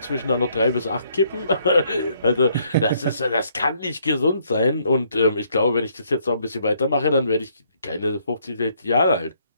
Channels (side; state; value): both; inverted; correlation -0.69